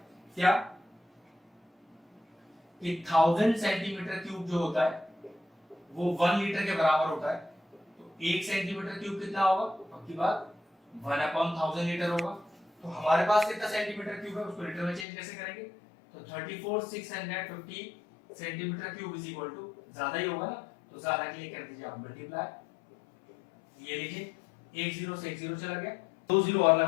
क्या कि 1000 सेंटीमीटर क्यूब जो होता है वो 1 लीटर के बराबर होता है। तो 1 सेंटीमीटर क्यूब कितना होगा? पक्की बात 1/1000 लीटर होगा। तो हमारे पास कितना सेंटीमीटर क्यूब है, उसको लीटर में चेंज कैसे करेंगे? तो 34,650 centimetre cube is equal to, ज्यादा ही होगा ना, तो ज्यादा के लिए कर दीजिए आप मल्टीप्लाई। ये लीजिए 1 0 से 1 0 चला गया, 2 0 और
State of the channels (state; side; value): drops out; right; at 15.1 s